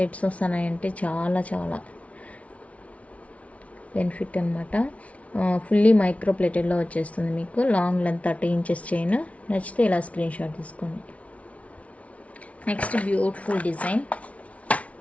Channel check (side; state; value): right; late; 0.065 ms